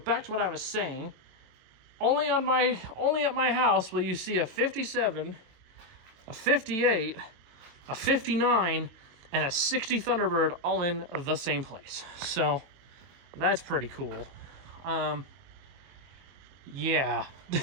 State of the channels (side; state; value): left; late; 22 ms